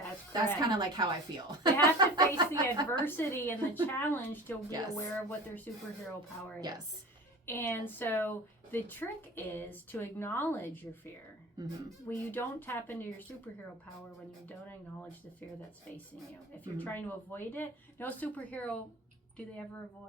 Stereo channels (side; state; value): both; normal; correlation 0.36